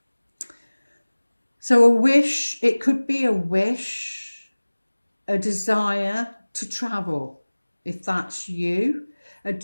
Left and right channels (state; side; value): inverted; both; correlation -1.00